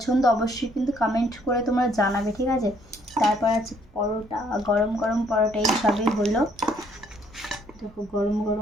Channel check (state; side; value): normal; both; correlation 0.66